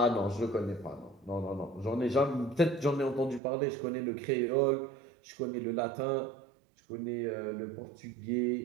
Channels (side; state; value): left; drops out; at 3.4 s